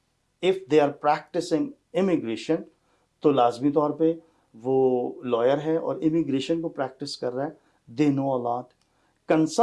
if they are practising immigration, تو لازمی طور پہ وہ لائر ہے اور امیگریشن کو پریکٹس کر رہا ہے, دے نو اے لاٹ.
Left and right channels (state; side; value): identical; both; correlation 1.00